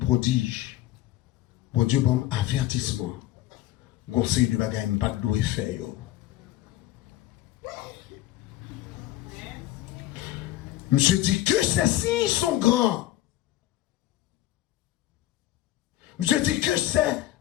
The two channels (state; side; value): quieter; right; 14.9 dB